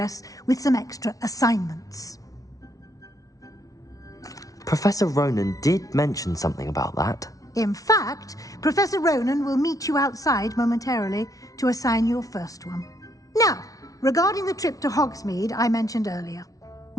with some extra assignments. Professor Ronan did mention something about that. In fact, Professor Ronan will meet you outside momentarily to assign your first one. Now, regarding the trip to Hogsmeade I mentioned earlier,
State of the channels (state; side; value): late; right; 0.17 ms